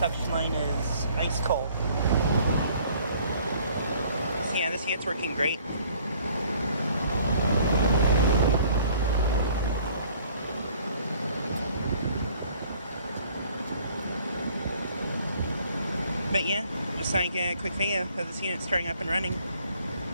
line is ice cold. So yeah, this unit's working great. But yeah, just like a quick video of this unit starting up and running.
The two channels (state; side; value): inverted; both; correlation -0.57